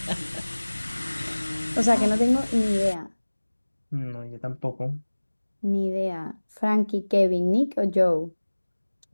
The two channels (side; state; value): both; inverted; correlation -1.00